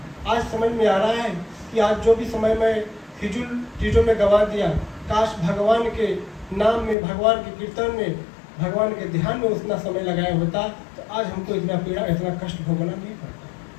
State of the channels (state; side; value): drops out; right; at 7.0 s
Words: आज समझ में आ रहा है कि आज जो भी समय मैं फिजूल चीज़ों में गंवा दिया, काश भगवान के नाम में, भगवान के कीर्तन में, भगवान के ध्यान में उतना समय लगाया होता तो आज हमको इतना पीड़ा, इतना कष्ट भोगना नहीं पड़ता।